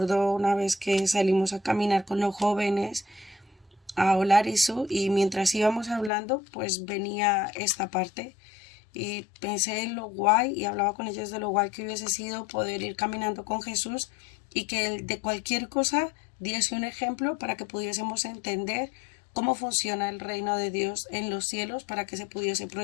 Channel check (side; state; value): right; drops out; at 6.1 s